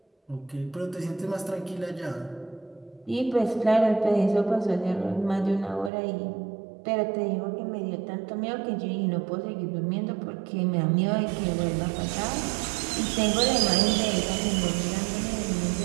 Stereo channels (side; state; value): left; drops out; at 5.9 s